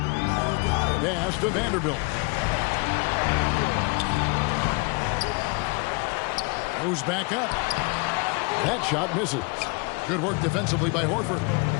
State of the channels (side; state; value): right; quieter; 30.0 dB